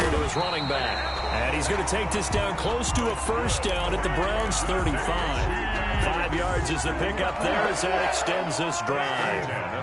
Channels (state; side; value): identical; both; correlation 1.00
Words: to his running back. And he's going to take this down close to a 1st down at the Browns' 35. 5 yards is the pickup there as that extends this drive.